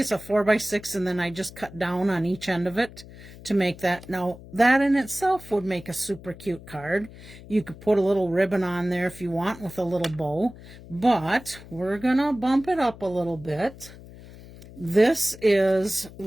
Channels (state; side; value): noise; left; hum, 18 dB below the sound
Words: a 4 by 6 and then I just cut down on each end of it to make that. Now that in itself would make a super cute card. You could put a little ribbon on there if you want with a little bow, but we're gonna bump it up a little bit. This is